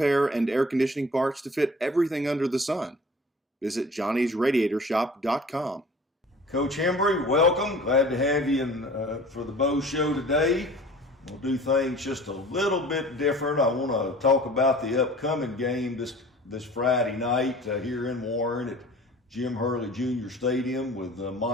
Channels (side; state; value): both; normal; correlation 0.45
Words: and air conditioning parts to fit everything under the sun, visit johnnysradiatorshop.com. Coach Hembree, welcome. Glad to have you for the Bo Show today. We'll do things just a little bit different. I want to talk about the upcoming game this Friday night here in Warren at Jim Hurley Jr. Stadium with